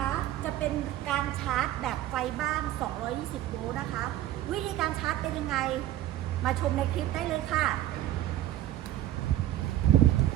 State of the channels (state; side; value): quieter; left; 13.6 dB